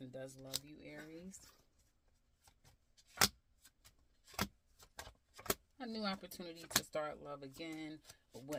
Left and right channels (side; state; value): both; identical; correlation 1.00